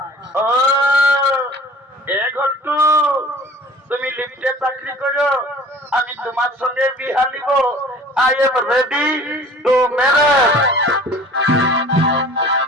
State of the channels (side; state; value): both; normal; correlation 0.46